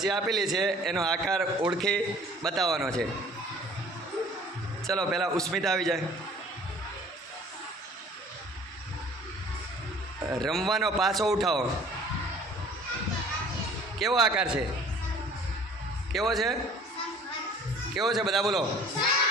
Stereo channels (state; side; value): normal; both; correlation 0.50